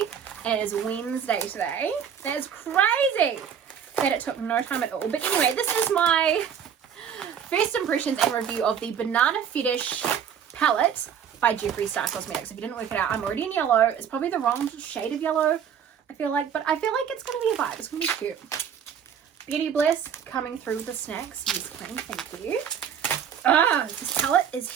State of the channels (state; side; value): quieter; left; 8.2 dB